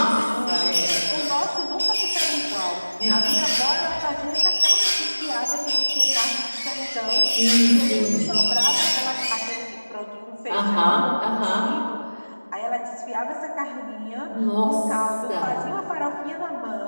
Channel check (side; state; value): both; inverted; correlation -1.00